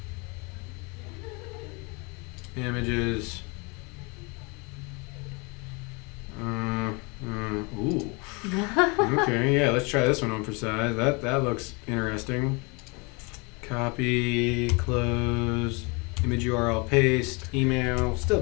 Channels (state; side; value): quieter; right; 29.9 dB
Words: images, ooh, okay, yeah, let's try this one on for size. That looks interesting. Copy, close, image URL paste, email, still